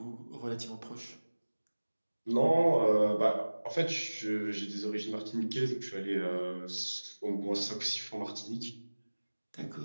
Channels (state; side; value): inverted; both; correlation -1.00